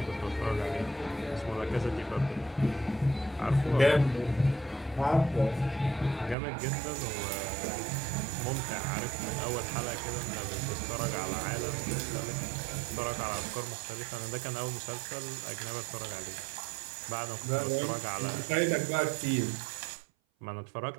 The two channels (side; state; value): left; drops out; at 6.4 s